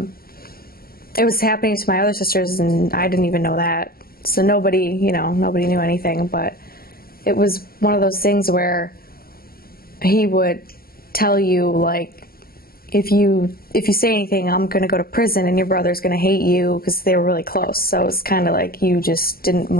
It was happening to my other sisters, and I didn't even know that. So nobody knew anything. But it was one of those things where he would tell you, like, if you say anything, I'm going to go to prison, and your brother's going to hate you, because they were really close. So it's kind of like you just didn't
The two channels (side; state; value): right; late; 0.43 ms